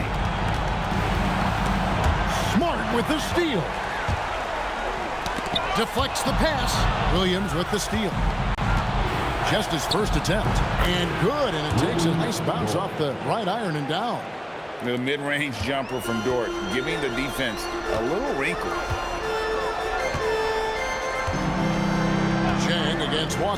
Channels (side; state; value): both; identical; correlation 1.00